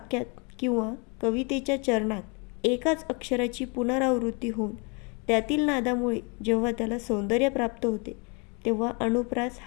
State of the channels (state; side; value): quieter; right; 32.5 dB